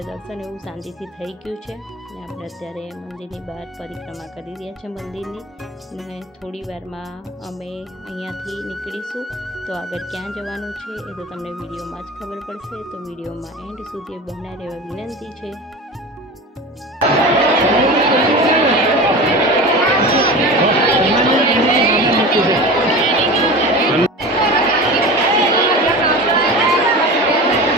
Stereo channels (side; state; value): both; normal; correlation 0.32